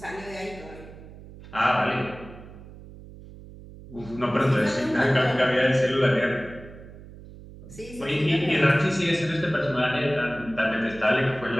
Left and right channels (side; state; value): right; noise; hum, 17 dB below the sound